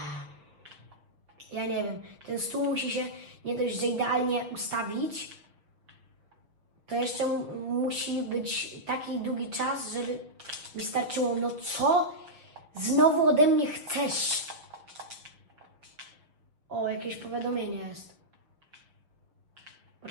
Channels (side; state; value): left; late; 6.3 ms